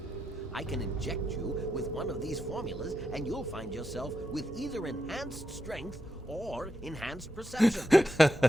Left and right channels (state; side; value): normal; both; correlation 0.84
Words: I can inject you with one of these formulas, and you'll find yourself with either enhanced strength or enhanced perception.